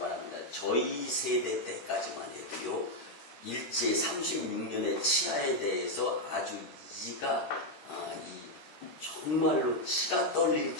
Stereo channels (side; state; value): right; late; 13 ms